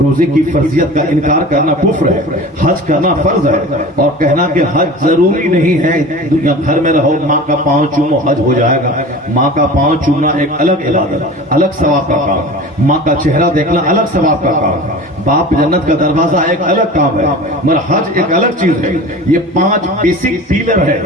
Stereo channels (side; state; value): both; normal; correlation 0.36